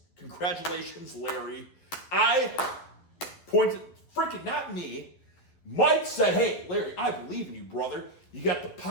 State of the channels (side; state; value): right; late; 12 ms